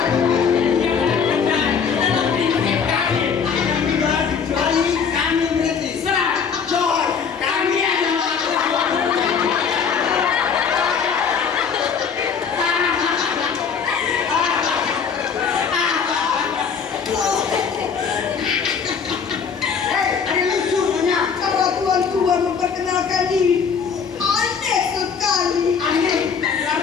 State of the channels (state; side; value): quieter; right; 6.4 dB